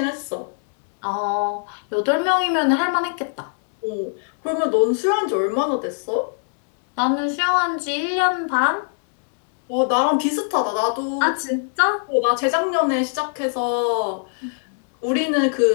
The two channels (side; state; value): right; silent; digital silence